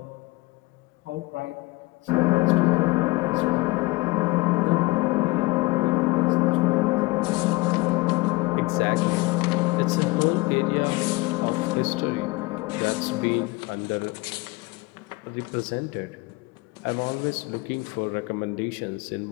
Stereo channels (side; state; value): right; quieter; 22.8 dB